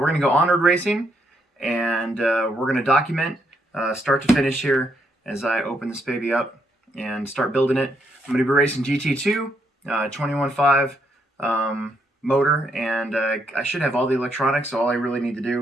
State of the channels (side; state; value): both; normal; correlation 0.75